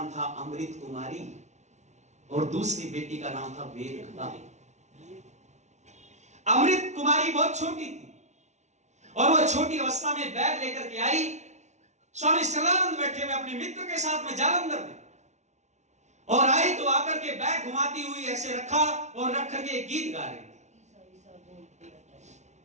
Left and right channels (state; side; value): late; left; 0.33 ms